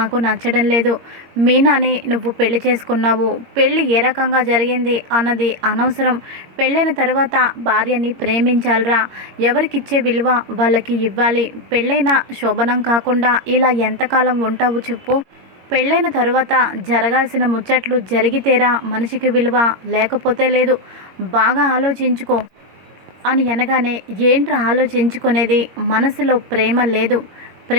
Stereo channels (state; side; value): late; left; 22 ms